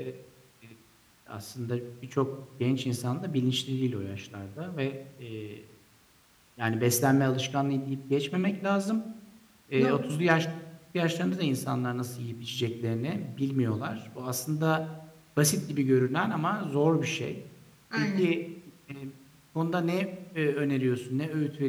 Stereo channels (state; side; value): identical; both; correlation 1.00